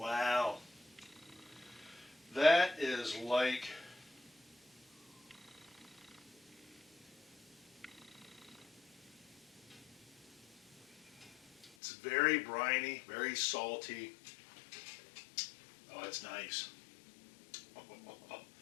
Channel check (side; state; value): right; drops out; at 11.8 s